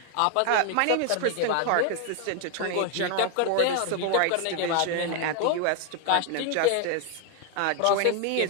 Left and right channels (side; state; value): both; different; correlation 0.00